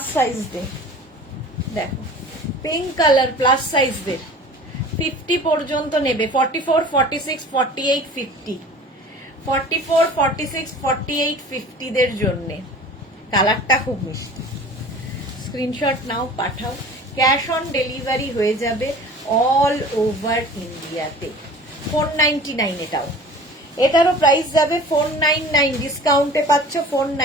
সাইজ দে, দেখো পিঙ্ক কালার প্লাস সাইজ দে, 50 পর্যন্ত নেবে, 44, 46, 48, 50, 44, 46, 48, 50 দের জন্য। কালারটা খুব মিষ্টি। স্ক্রিনশট নাও, পাঠাও, ক্যাশ অন ডেলিভারি হয়ে যাবে অল ওভার ইন্ডিয়াতে। 499 এটাও, এটারও প্রাইস যাবে 499, ডিসকাউন্টে পাচ্ছ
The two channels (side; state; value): both; normal; correlation 0.42